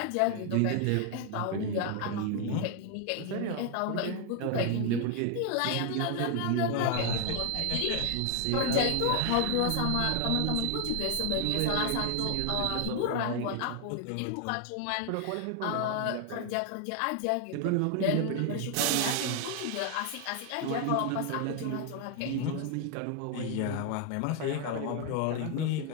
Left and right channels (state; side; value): different; both; correlation 0.00